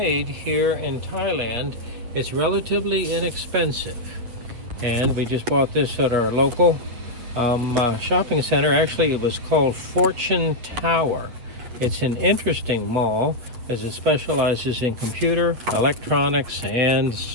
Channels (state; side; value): late; left; 8.6 ms